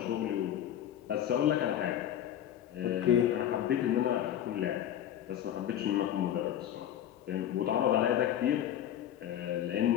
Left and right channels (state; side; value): quieter; right; 10.9 dB